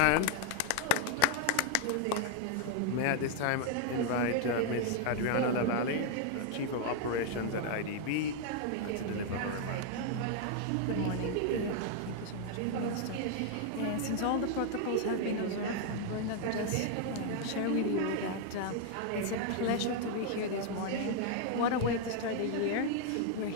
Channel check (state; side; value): different; both; correlation 0.00